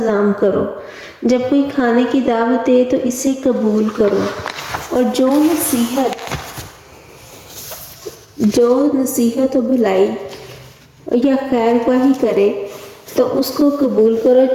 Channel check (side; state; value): both; identical; correlation 1.00